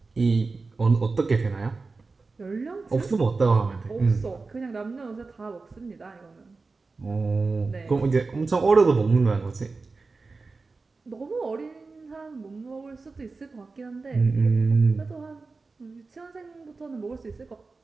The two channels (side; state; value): left; quieter; 4.0 dB